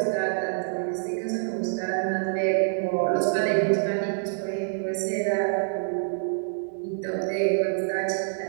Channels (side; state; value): left; silent; digital silence